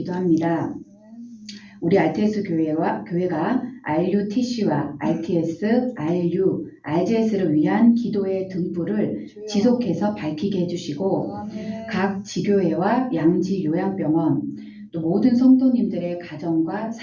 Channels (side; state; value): both; identical; correlation 1.00